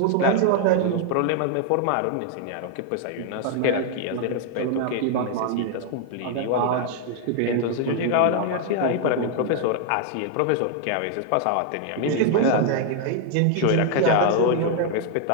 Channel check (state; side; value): different; both; correlation 0.00